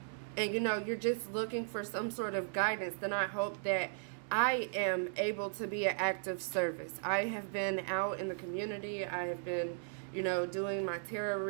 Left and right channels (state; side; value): silent; left; digital silence